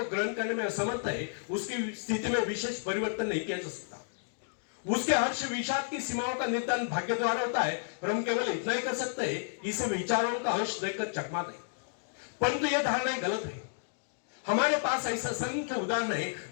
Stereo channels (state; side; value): silent; right; digital silence